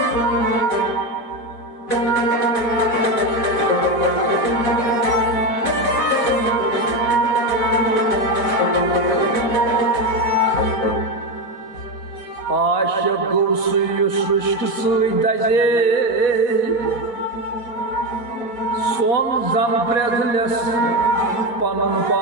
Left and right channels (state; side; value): late; right; 4.2 ms